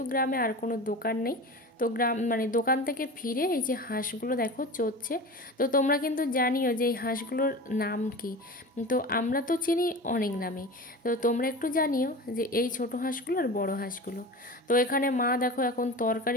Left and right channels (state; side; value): normal; both; correlation 0.32